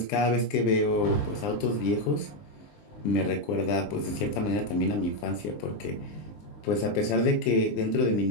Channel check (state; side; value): late; right; 20 ms